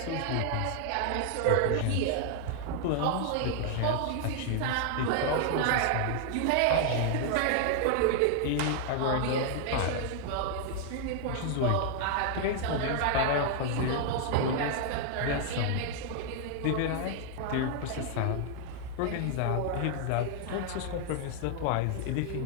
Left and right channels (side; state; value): both; different; correlation 0.00